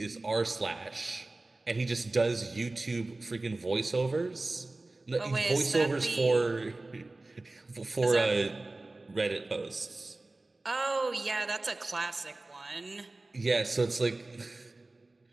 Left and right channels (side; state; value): left; quieter; 3.0 dB